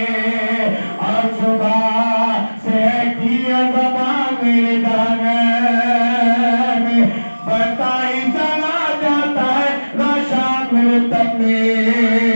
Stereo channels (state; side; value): inverted; both; correlation -1.00